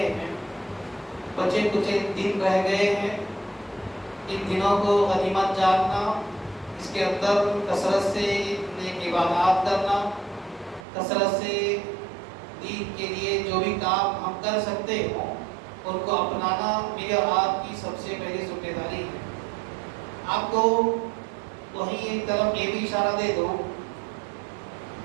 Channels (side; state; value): left; drops out; at 10.9 s